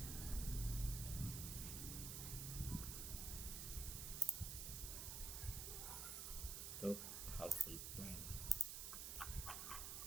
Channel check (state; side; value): noise; right; hiss, 3 dB below the sound